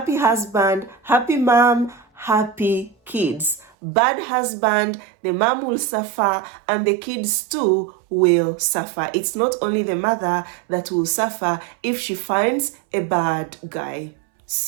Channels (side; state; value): left; drops out; at 3.7 s